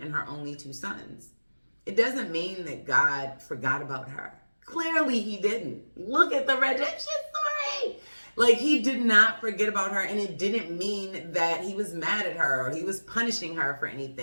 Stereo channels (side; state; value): both; inverted; correlation -1.00